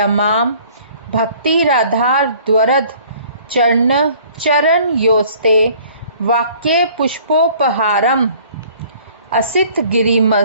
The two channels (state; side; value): inverted; both; correlation -0.54